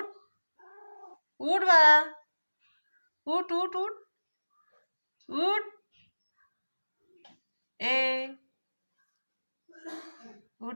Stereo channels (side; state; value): both; inverted; correlation -1.00